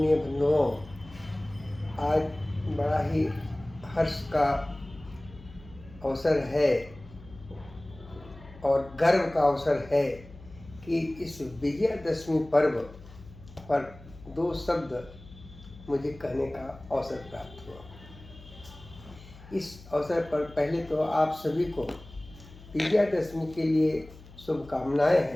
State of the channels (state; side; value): noise; left; hum, 19 dB below the sound